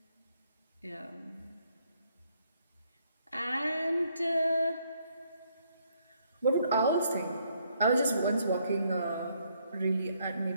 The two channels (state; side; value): inverted; both; correlation -0.71